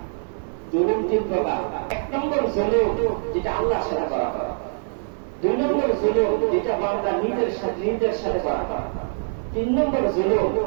জুলুম তিন প্রকার। এক নম্বর জুলুম যেটা আল্লাহর সাথে করা হয়। দুই নম্বর জুলুম যেটা বান্দা নিজের সাথে করা হয়। তিন নম্বর জুলুম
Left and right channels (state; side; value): silent; left; 59 dB below the other